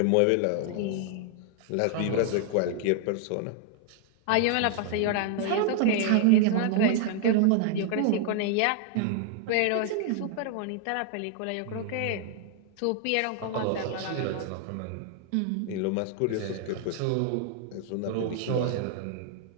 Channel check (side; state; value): both; different; correlation 0.00